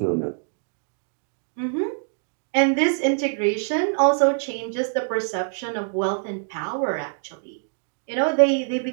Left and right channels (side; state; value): left; silent; digital silence